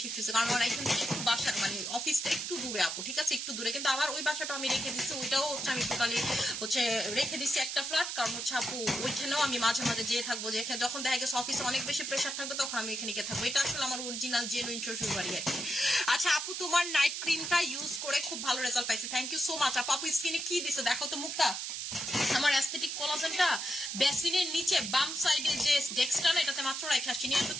শিফট হয়েছি, কারণ আমার এখান থেকে একটু বাসা মানে অফিসটা একটু দূরে আপু, ঠিক আছে? একটু দূরে, কিন্তু আবার ওই বাসাটা আমি রেখে দিচ্ছি, ওইটাও হচ্ছে আমি টোটালি হচ্ছে রেখে দিচ্ছি একটা ফ্ল্যাট, কারণ হচ্ছে আপু ওইখানেও আমি মাঝে মাঝে যেয়ে থাকবো, যেখানে যখন দেখা গেছে অফিসে অনেক বেশি প্রেশার থাকবে তখন আমি এখানে গিয়ে থাকবো। এটা আসলে আমার অরিজিনাল জেনুইন শ্বশুর বাড়ি আর কি। আচ্ছা আপু তোমার নাইট ক্রিমটা ইউজ করে খুব ভালো রেজাল্ট পাইছি, থ্যাংক ইউ সো মাচ আপু। স্কিনে কি দিছো দেখো তো মুক্তা, আমার অ্যাস্থেটিক কোলাজেনটা বেসিনের নিচে বাম সাইডে যে ডেক্সটা না, এটাতে মাত্র রেখে আসছি নিয়ে আসো।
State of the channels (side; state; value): right; noise; hiss, 4 dB below the sound